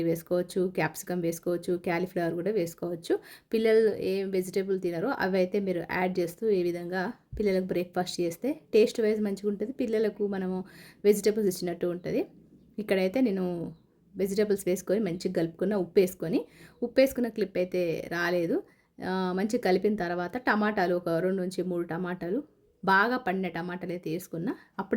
వేసుకోవచ్చు, క్యాప్సికమ్ వేసుకోవచ్చు, క్యాలీఫ్లవర్ కూడా వేసుకోవచ్చు. పిల్లలు ఏం వెజిటేబుల్ తినరో అవి అయితే మీరు యాడ్ చేస్తూ ఈ విధంగా పిల్లలకు బ్రేక్ఫాస్ట్ చేస్తే టేస్ట్ వైజ్ మంచిగా ఉంటుంది. పిల్లలకు మనము వెజిటేబుల్స్ ఇచ్చినట్టు ఉంటుంది. ఇక్కడైతే నేను వెజిటేబుల్స్ వేసుకొని మంచిగా కలుపుకున్న, ఉప్పు వేసుకున్న క్లిప్ అయితే రాలేదు. మంచిగా కలిపిన తర్వాత టమాటాలు ఒక 2 నుంచి 3 టమాటాలు, బాగా పండిన టమాటాలు అయితే వేసుకున్నా.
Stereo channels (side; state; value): both; identical; correlation 1.00